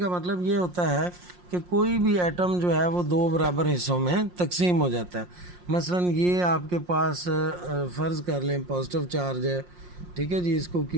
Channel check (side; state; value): left; late; 5.6 ms